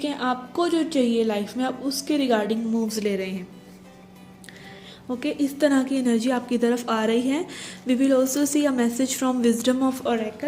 है, आपको जो चाहिए लाइफ में आप उसके रिगार्डिंग मूव्स ले रहे हैं। ओके, इस तरह की एनर्जी आपकी तरफ आ रही है। We will also see a message from Wisdom of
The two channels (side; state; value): both; identical; correlation 1.00